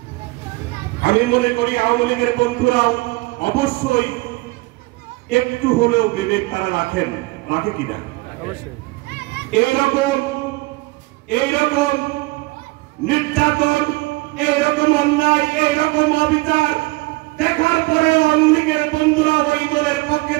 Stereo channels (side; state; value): left; quieter; 22.9 dB